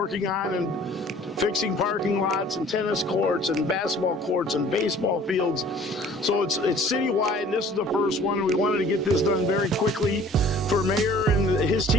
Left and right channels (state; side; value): normal; both; correlation 0.51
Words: on, and fixing parking lots and tennis courts and basketball courts and baseball fields. So it's citywide, and this is the first one. We wanted to get this done very quickly for Mayor and his